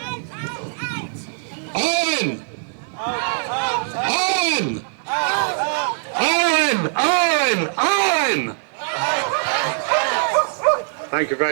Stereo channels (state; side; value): silent; left; 65 dB below the other